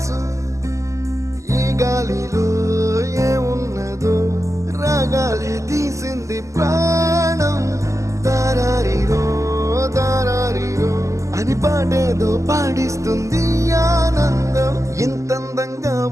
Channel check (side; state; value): left; late; 0.15 ms